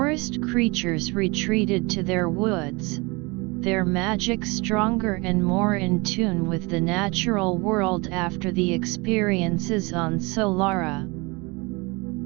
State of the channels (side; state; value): left; quieter; 26.7 dB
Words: creatures retreated to their woods, their magic stronger and more in tune with the natural world after the experiences on Solara.